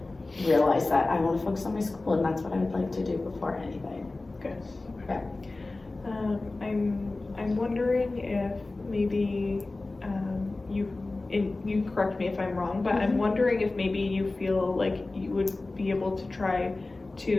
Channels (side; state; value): right; quieter; 3.2 dB